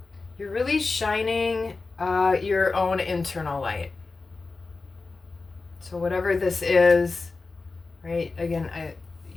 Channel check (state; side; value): quieter; right; 3.9 dB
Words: You're really shining your own internal light. So whatever this is, right? Again,